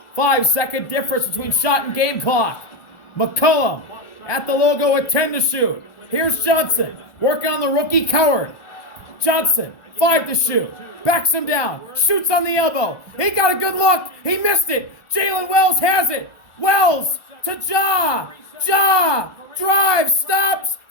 5-second difference between shot and game clock. McCollum at the logo with 10 to shoot. Here's Johnson working on the rookie Coward. Johnson, 5 to shoot. Backs him down. Shoots on the elbow. He got a good look. He missed it. Jalen Wells has it. Wells to Ja. Ja drives, stops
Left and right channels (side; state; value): right; late; 1.2 ms